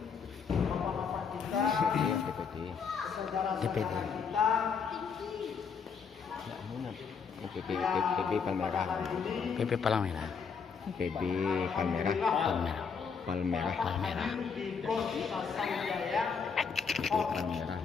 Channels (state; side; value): quieter; right; 6.0 dB